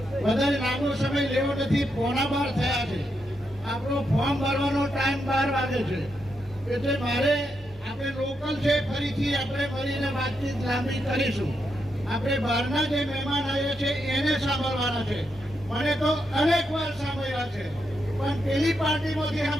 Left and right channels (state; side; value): normal; both; correlation 0.82